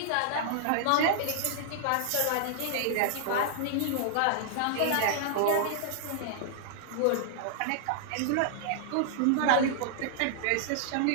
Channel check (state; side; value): different; both; correlation -0.01